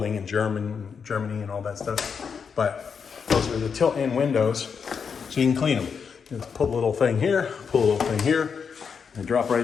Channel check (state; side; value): quieter; right; 6.2 dB